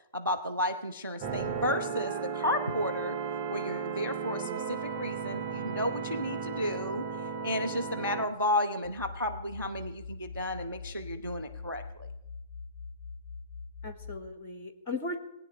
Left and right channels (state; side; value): inverted; both; correlation -0.37